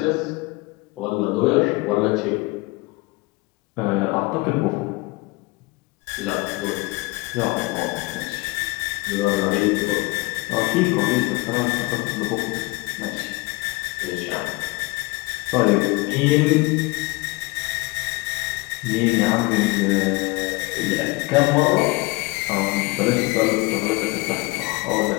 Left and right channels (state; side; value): quieter; right; 24.1 dB